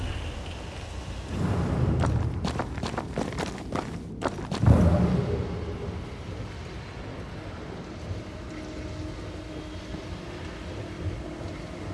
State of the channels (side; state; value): both; identical; correlation 1.00